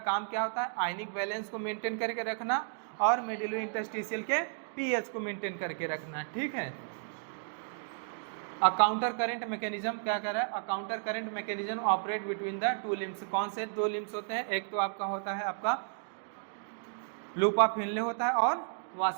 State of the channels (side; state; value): left; silent; digital silence